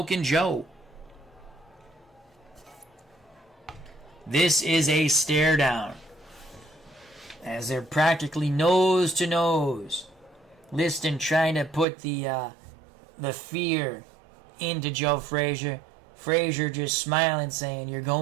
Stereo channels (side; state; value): left; drops out; at 11.9 s